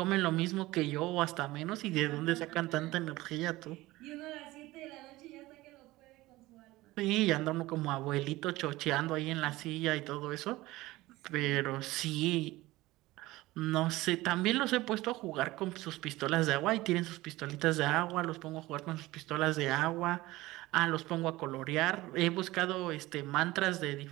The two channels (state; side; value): quieter; left; 18.7 dB